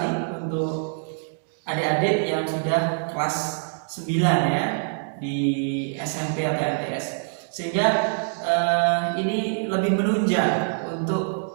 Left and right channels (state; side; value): silent; left; digital silence